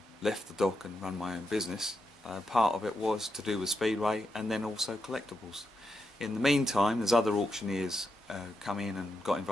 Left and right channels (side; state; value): both; normal; correlation 0.85